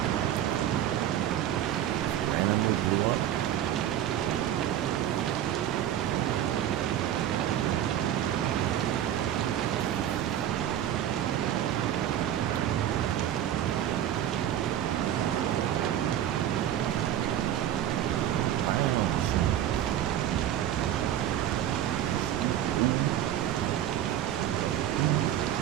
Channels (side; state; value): left; quieter; 11.3 dB